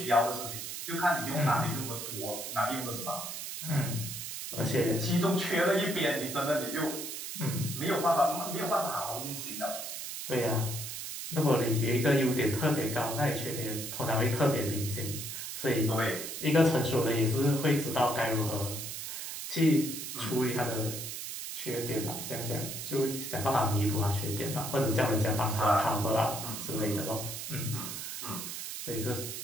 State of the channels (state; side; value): noise; right; hiss, 6 dB below the sound